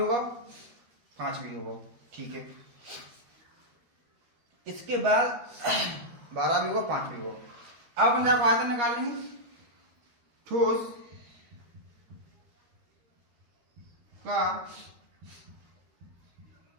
5 भी होगा, ठीक है। इसके बाद 12 भी होगा 5 भी होगा। अब अपन जाकर आयतन निकाल लेंगे, ठोस का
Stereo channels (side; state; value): left; late; 13 ms